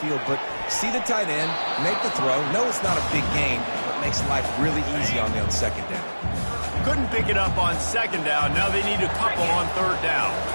but see the tight end, make the throw. No, it's not a big game, but makes life really easy on me on 2nd down. Couldn't pick it up on 2nd down. Now they need a couple on 3rd down.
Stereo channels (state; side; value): inverted; both; correlation -1.00